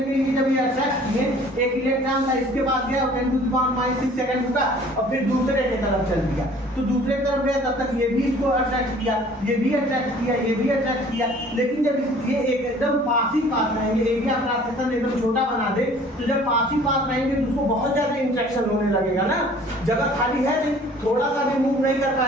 के लिए जब ये अट्रैक्ट किए, एक इलेक्ट्रॉन था इसके पास गया, 10⁻⁶ सेकंड रुका और फिर दूसरे की तरफ चल दिया, तो दूसरे की तरफ गया तब तक ये भी इसको अट्रैक्ट किया, ये भी अट्रैक्ट किया, ये भी अट्रैक्ट किया। लेकिन जब ये एकदम पास ही पास रहेंगे, एरिया क्रॉस सेक्शन एकदम छोटा बना दे, तो जब पास ही पास रहेंगे तो उसको बहुत ज्यादा इंटरेक्शन होने लगेगा ना, जगह खाली है नहीं, थोड़ा सा भी मूव नहीं कर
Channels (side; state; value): both; normal; correlation 0.51